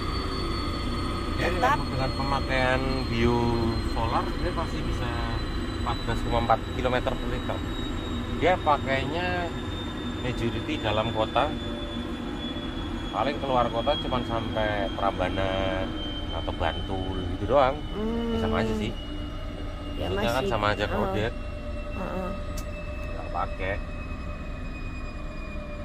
Tetap dengan pemakaian biosolar dia pasti bisa 14,4 km per liter. Dia pakainya majority dalam kota. Paling keluar kota cuma sampai Prambanan atau Bantul gitu doang. Sama aja sih. Ya maksudnya masih kan sama aja kode. Nggak pakai.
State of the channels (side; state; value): both; identical; correlation 1.00